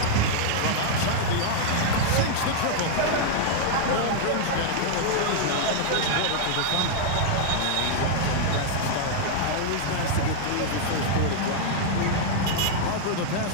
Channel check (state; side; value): different; both; correlation -0.01